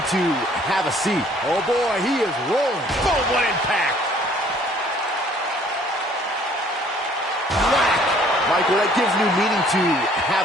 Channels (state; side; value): normal; both; correlation 0.58